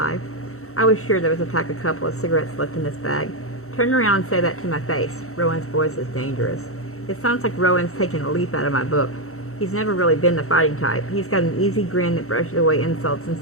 I was sure there was a pack of couple of cigarettes left in this bag. "Turn around and say that to my face." Rowan's voice is dangerous. It sounds like Rowan's taken a leaf out of my book. He's never really been the fighting type. He's got an easy grin that brushes away insults and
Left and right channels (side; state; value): right; late; 0.63 ms